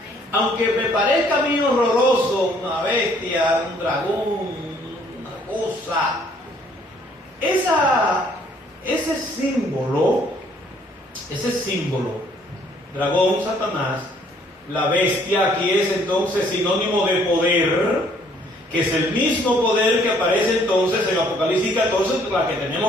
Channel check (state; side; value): normal; both; correlation 0.62